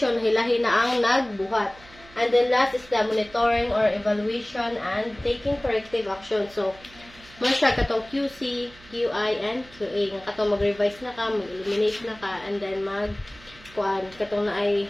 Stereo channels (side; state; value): right; noise; hum, 23 dB below the sound